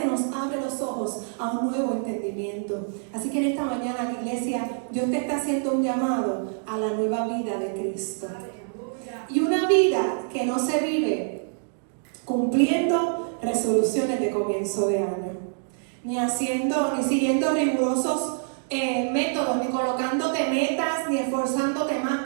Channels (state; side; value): silent; left; digital silence